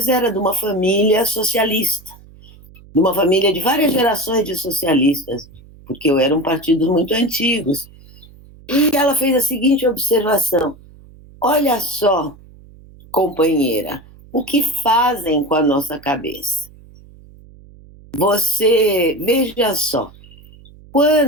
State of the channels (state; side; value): noise; right; hum, 23 dB below the sound